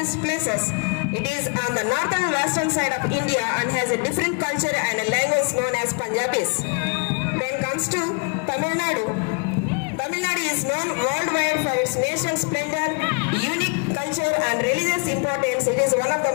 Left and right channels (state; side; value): quieter; right; 34.2 dB